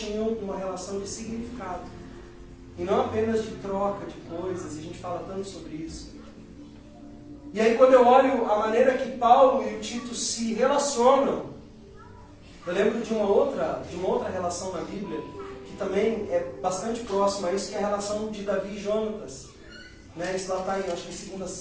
uma relação de significado. E não apenas de troca de coisas, e a gente fala tanto sobre isso. E aí quando eu olho a maneira que Paulo e o Tito se relacionam, eu lembro de uma outra relação na Bíblia, que também é bastante próxima a isso, que é a relação de Davi e Jonatas. Né? Isso lá está em, acho que 2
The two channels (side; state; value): both; identical; correlation 1.00